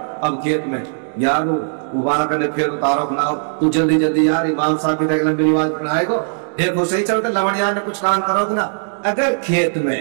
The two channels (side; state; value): left; silent; digital silence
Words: اب کھیت میں یارو مبارک کرنے پھر اتارو اپنا، تو جلدی یار امام صاحب کی طرح لمبی نماز پڑھائے گو، دیکھو صحیح چلتا لوڑیاں نے کچھ کام کرو گے نا۔ اگر کھیت میں،